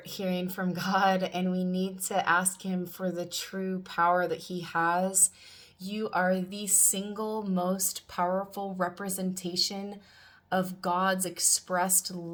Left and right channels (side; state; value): both; identical; correlation 1.00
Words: hearing from God, and we need to ask him for the true power that he has. You are the single most powerful representation of God's expressed